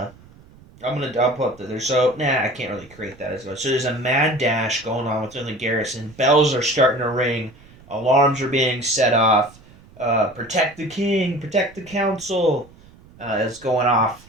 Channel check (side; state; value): right; noise; rumble, 24 dB below the sound